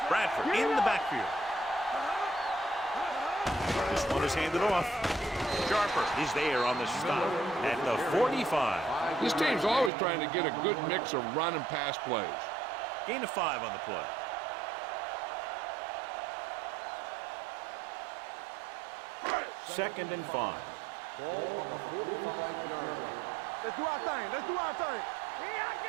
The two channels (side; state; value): left; drops out; at 9.9 s